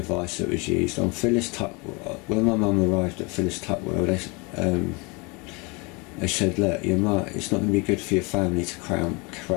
that was used on Phyllis Tuckwell, when my mum arrived at Phyllis Tuckwell, they said, look, your mum, it's not going to be good for your family to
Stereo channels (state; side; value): quieter; right; 28.7 dB